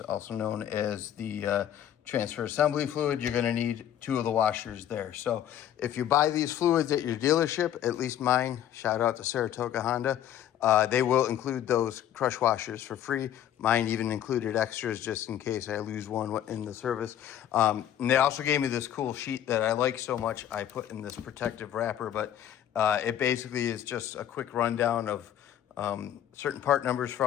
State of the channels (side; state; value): right; quieter; 10.8 dB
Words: known as the transfer assembly fluid, you're going to need 2 of the washers there. So if you buy these fluids at your dealership, at least mine, shout out to Saratoga Honda, they will include those crush washers for free. Mine even included extras just in case I lose one in the service. And they also gave me this cool sheet that I like so much. I put in this protective wrapper, but it basically is just a quick rundown of certain part numbers for